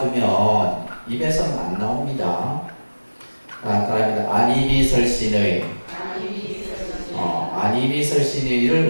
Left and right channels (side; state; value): both; inverted; correlation -1.00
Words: 입에서는 안 나옵니다. 그러니까 안이비설신의 안이비설신의를